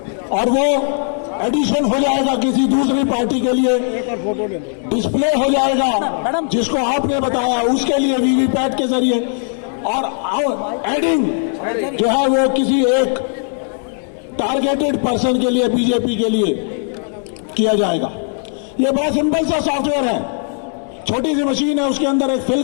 और वो एडिशन हो जाएगा किसी दूसरी पार्टी के लिए, डिस्प्ले हो जाएगा जिसको आपने बताया उसके लिए वीवीपैट के जरिए, और एडिंग जो है वो किसी एक टारगेटेड पर्सन के लिए, बीजेपी के लिए किया जाएगा। ये बड़ा सिंपल सा सॉफ्टवेयर है, छोटी सी मशीन है, उसके अंदर एक फिल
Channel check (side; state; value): right; silent; 57 dB below the other